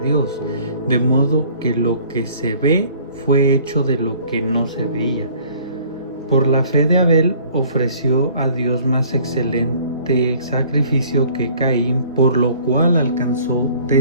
Dios, de modo que lo que se ve fue hecho de lo que no se veía. Por la fe de Abel ofreció a Dios más excelente sacrificio que Caín, por lo cual alcanzó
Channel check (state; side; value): inverted; both; correlation -0.54